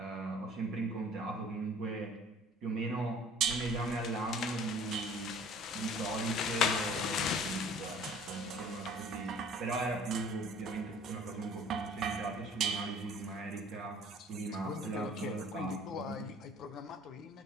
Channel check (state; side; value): normal; both; correlation 0.50